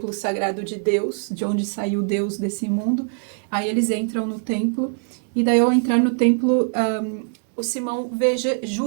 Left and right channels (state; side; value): silent; left; 56 dB below the other